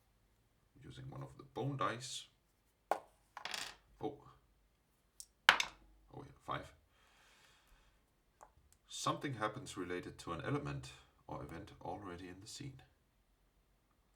Using one of the bone dice. Oh, yeah, 5. Something happens related to an element or event already in the scene.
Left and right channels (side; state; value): both; identical; correlation 1.00